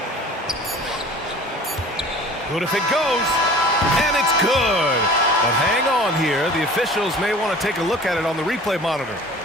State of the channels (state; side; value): normal; both; correlation 0.44